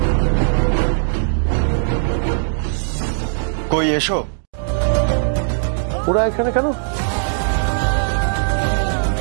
কই এসো। ওরা এখানে কেন?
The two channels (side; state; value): left; silent; digital silence